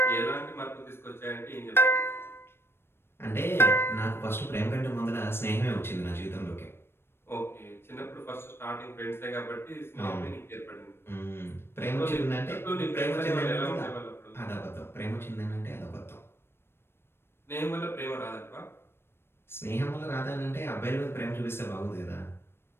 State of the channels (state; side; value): late; right; 0.12 ms